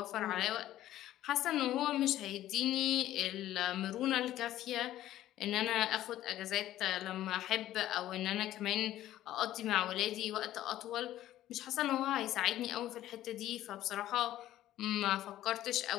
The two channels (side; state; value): right; quieter; 13.6 dB